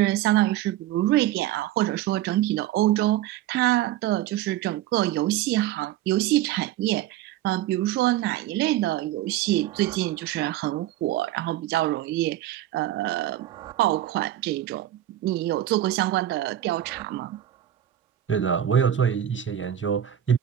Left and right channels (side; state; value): left; quieter; 12.6 dB